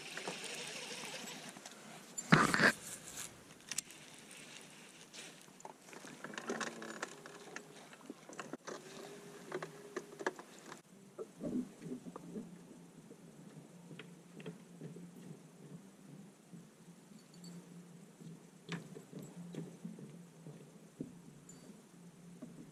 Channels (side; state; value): both; identical; correlation 1.00